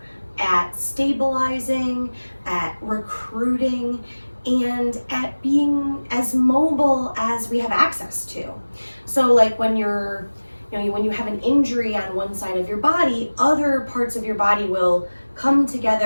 at stabilizing, at recruiting, and at being as mobile as we have access to. So when when you have an injury on one side of your body, other parts of your body will come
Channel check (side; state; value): both; inverted; correlation -1.00